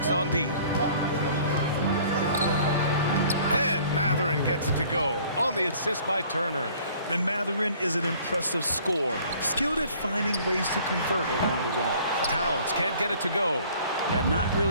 on D. And Mathurin gets it to go on the assist by Turner. And Mathurin is an impressive scorer, skilled at finding ways to convert around the rim. Towns can't get it to go. Yeah, not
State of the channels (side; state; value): both; inverted; correlation -0.54